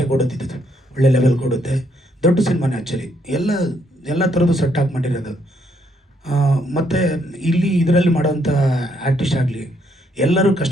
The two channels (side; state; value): both; normal; correlation 0.72